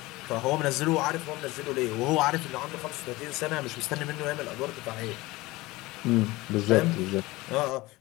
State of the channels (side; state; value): right; quieter; 20.5 dB